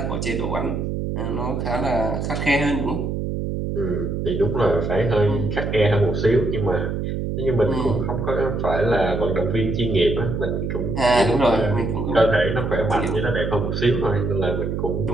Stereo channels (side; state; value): right; noise; hum, 2 dB below the sound